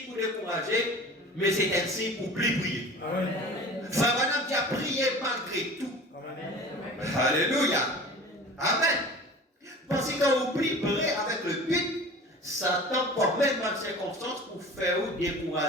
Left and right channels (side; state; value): both; normal; correlation 0.40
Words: pour décourager. Mais c'est un signe pour plus prier. Fabana qui a prié malgré tout. Amen. Alléluia. Amen. Parce que quand vous priez avec le but, Satan prend même dans les circonstances pour faire ou